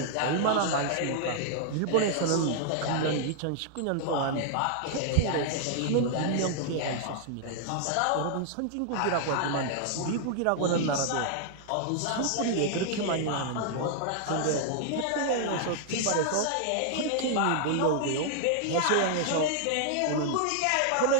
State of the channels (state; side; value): different; both; correlation -0.01